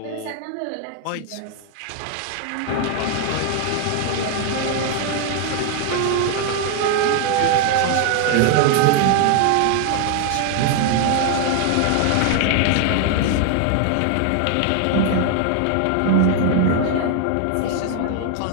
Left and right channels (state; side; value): different; both; correlation 0.00